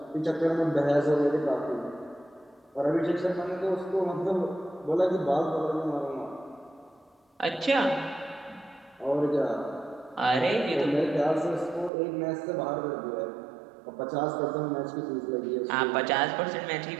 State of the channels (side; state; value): left; drops out; at 11.9 s